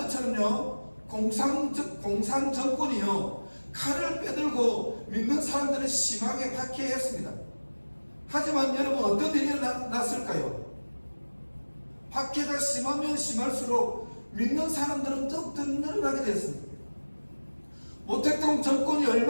공산 정권이요, 칼을 빼들고 믿는 사람들을 심하게 박해했습니다. 하지만 여러분, 어떤 일이 났을까요? 박해가 심하면 심할수록 믿는 사람들은 더욱더 늘어나게 됐습니다. 모택동 정권이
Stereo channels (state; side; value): inverted; both; correlation -1.00